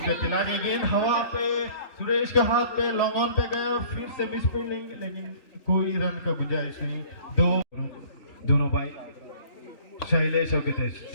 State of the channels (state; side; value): late; right; 3.4 ms